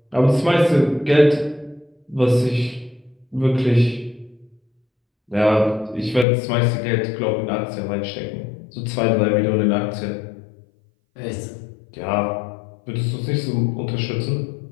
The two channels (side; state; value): right; drops out; at 6.2 s